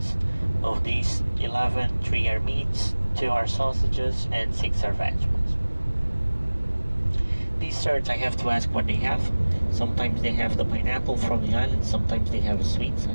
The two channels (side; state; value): both; inverted; correlation -1.00